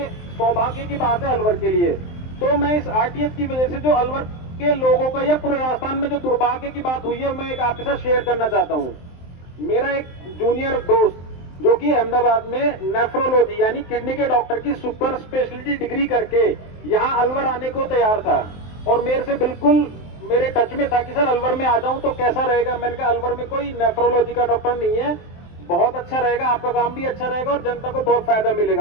सौभाग्य की बात है अलवर के लिए। तो मैं इस आरटीएस की वजह से जो अलवर के लोगों का या पूरे राजस्थान में जो दुर्भाग्य की बात हुई है, मैं एक आपके साथ शेयर करना चाहता हूँ। मेरा एक जूनियर दोस्त जो कि अहमदाबाद में नेफ्रोलॉजी यानी किडनी के डॉक्टर की सुपर स्पेशलिटी डिग्री करके यहाँ अलवर आने को तैयार था और मेरे से बिल्कुल मेरे टच में था कि सर अलवर में आ जाऊं तो कैसा रहेगा। मैंने कहा अलवर में कोई नेफ्रोलॉजी का डॉक्टर नहीं है, बहुत अच्छा रहेगा, आपका काम भी अच्छा रहेगा और जनता को बहुत फायदा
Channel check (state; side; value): late; right; 23 ms